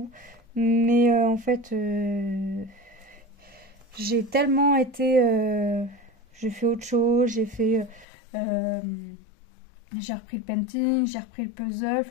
Mais en fait, j'ai tellement été... j'ai fait autre chose, euh, j'ai repris le painting, j'ai repris le puzzle,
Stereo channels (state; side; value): drops out; right; at 8.1 s